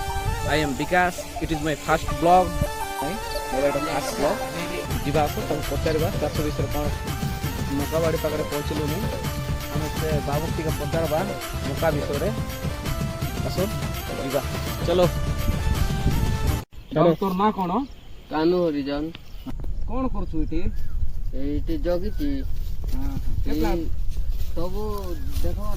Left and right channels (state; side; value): identical; both; correlation 1.00